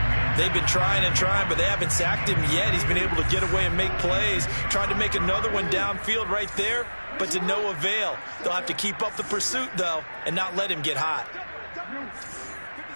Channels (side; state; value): both; inverted; correlation -1.00